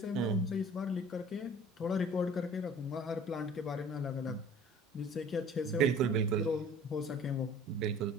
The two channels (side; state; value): both; normal; correlation 0.47